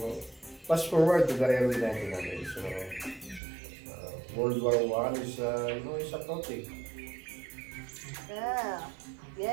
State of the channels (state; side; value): drops out; left; at 3.4 s